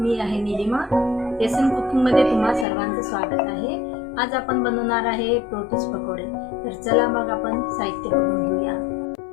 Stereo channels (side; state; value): right; drops out; at 2.7 s